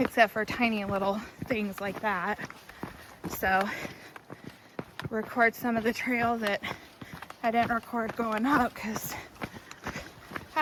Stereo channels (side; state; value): both; identical; correlation 1.00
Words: for tiny little things like that. So, record some of the trail that I didn't record going up because